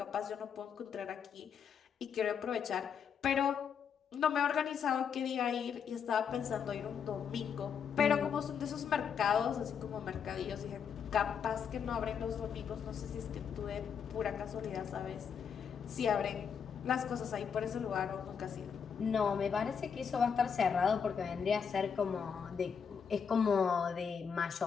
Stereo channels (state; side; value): quieter; right; 7.0 dB